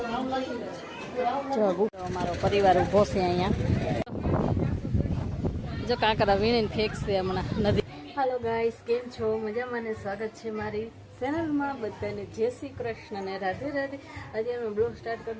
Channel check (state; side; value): identical; both; correlation 1.00